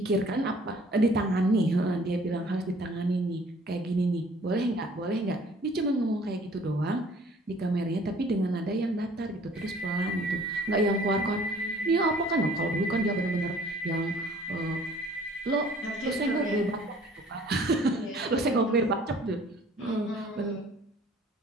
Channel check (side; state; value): both; normal; correlation 0.54